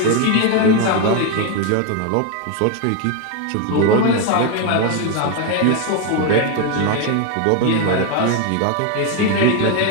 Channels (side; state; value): both; different; correlation 0.01